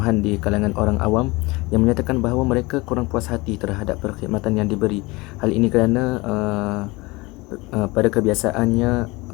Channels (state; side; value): quieter; right; 23.4 dB